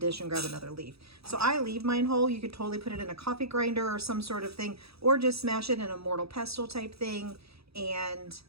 and grab another leaf. So I leave mine whole. You could totally put it in a coffee grinder or some sort of thing, or just smash it in a mortar pestle type thing and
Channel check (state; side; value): late; left; 0.77 ms